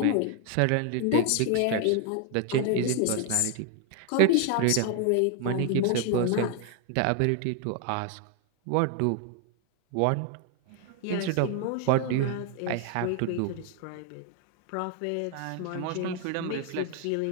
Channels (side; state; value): both; different; correlation 0.01